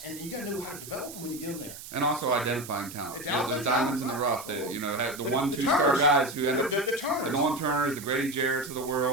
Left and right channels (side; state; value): right; noise; hiss, 13 dB below the sound